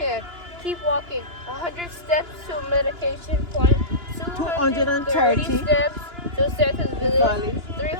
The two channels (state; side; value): late; left; 2.9 ms